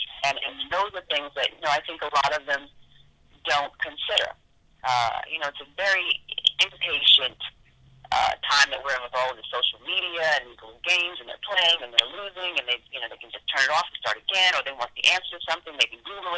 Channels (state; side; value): identical; both; correlation 1.00